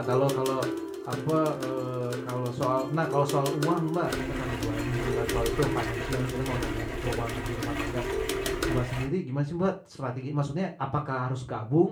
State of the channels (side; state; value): both; identical; correlation 1.00